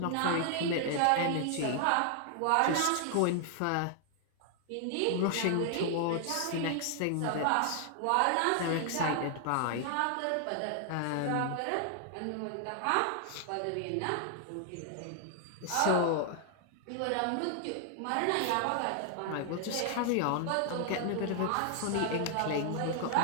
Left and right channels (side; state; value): both; different; correlation 0.00